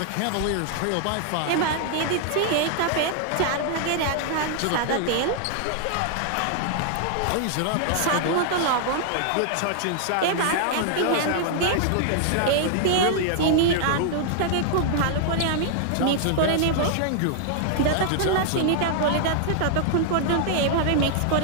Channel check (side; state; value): both; different; correlation -0.01